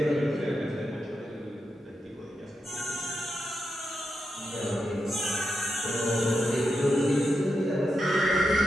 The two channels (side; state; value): both; normal; correlation 0.86